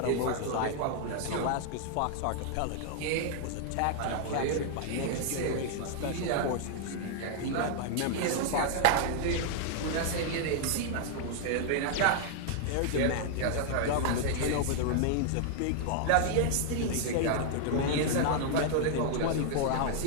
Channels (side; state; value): both; different; correlation 0.00